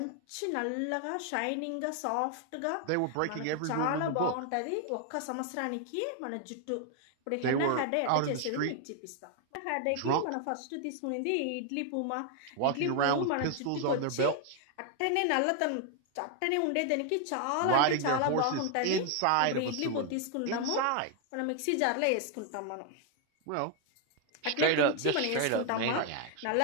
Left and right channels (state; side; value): different; both; correlation 0.00